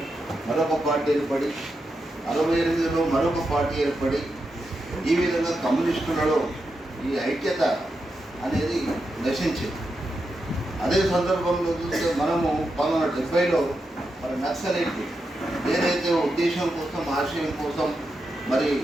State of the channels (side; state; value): both; normal; correlation 0.87